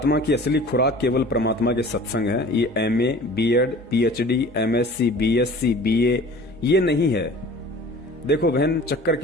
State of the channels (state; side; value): normal; both; correlation 0.44